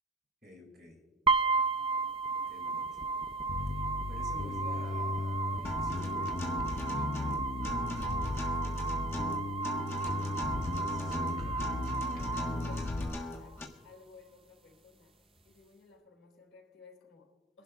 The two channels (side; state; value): both; normal; correlation 0.41